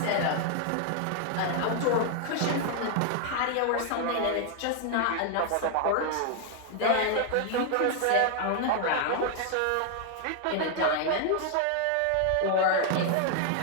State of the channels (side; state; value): both; different; correlation 0.00